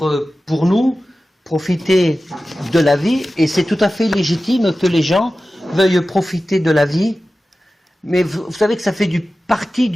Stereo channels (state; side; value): normal; both; correlation 0.95